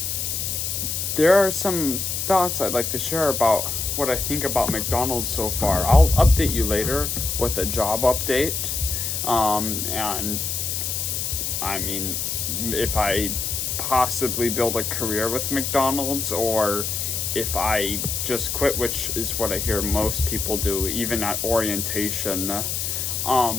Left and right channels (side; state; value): left; noise; hiss, 2 dB below the sound